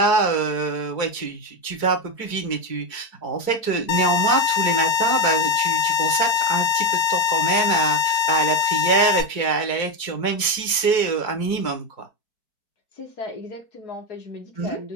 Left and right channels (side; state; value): right; late; 4.6 ms